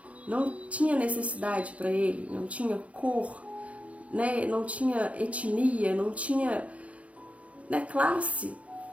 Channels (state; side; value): late; left; 0.065 ms